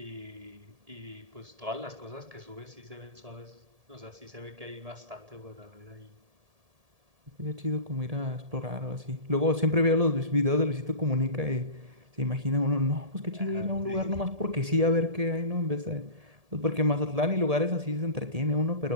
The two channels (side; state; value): left; late; 1.7 ms